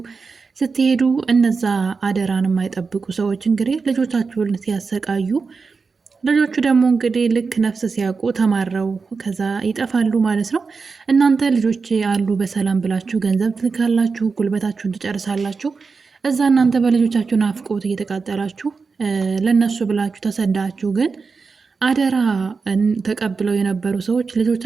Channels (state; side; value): quieter; left; 4.8 dB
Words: ስትሄዱ እነዛ አደራን የማይጠብቁ ሰዎች እንግዲህ ልጆቻችሁን ሲያሰቃዩ፣ ልጆቹ ደግሞ እንግዲህ ልክ ነፍስ ሲያውቁ ተማረው ከዛ ይጠፋሉ ማለት ነው። እናንተ ልጆች አሉ በሰላም ብላችሁ ገንዘብ ትልካላችሁ፣ ጉልበታችሁን ትጨርሳላችሁ። እዛ እናንተ በልጆቻችሁ ናፍቆት እየተቃጠላችሁ ለነሱ ብላችሁ ተሰዳችሁ፣ ግን አደራ ተቀብለው የነበሩ ሰዎች